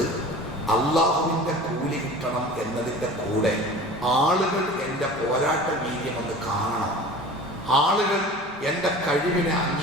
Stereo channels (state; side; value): normal; both; correlation 0.39